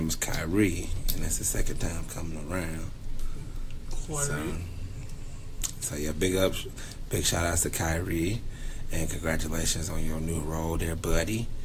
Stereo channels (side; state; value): both; identical; correlation 1.00